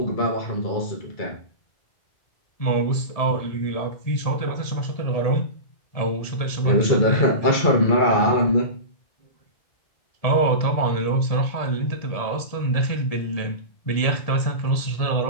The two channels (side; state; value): right; late; 1.8 ms